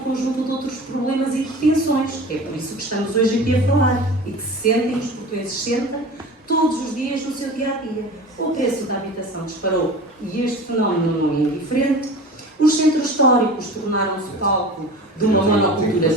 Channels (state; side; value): normal; both; correlation 0.36